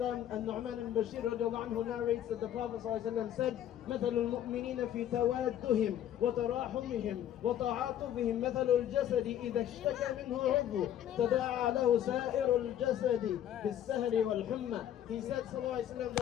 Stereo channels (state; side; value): quieter; right; 11.0 dB